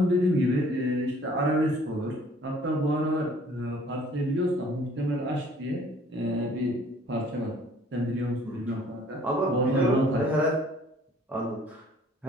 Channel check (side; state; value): both; normal; correlation 0.56